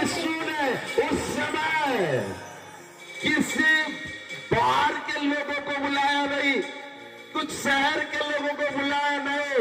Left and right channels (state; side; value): identical; both; correlation 1.00